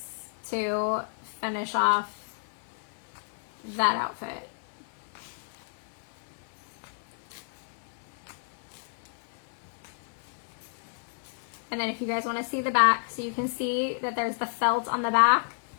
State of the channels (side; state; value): right; silent; digital silence